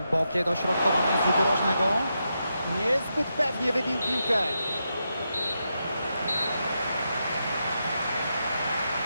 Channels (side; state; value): both; inverted; correlation -0.85